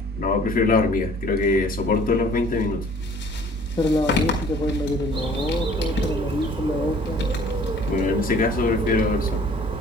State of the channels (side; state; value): both; normal; correlation 0.53